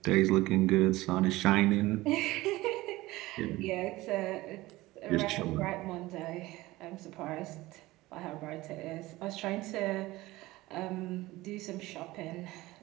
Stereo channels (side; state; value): left; quieter; 18.8 dB